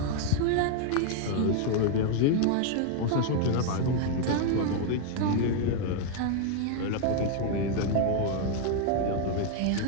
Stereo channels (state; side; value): different; both; correlation 0.00